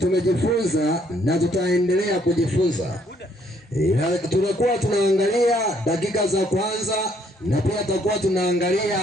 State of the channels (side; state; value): both; normal; correlation 0.67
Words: na tutaendelea kujifunza. Tunakuwa tunaangalia dakika za kwanza na pia tutakuwa tunaangalia